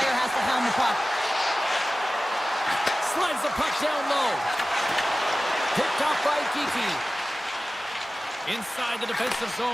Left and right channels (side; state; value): both; normal; correlation 0.96